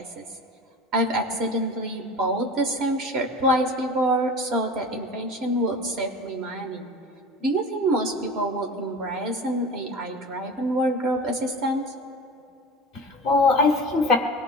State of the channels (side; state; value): both; normal; correlation 0.34